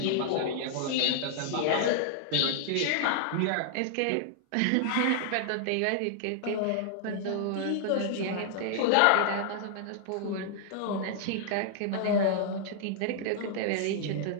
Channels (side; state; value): both; different; correlation -0.01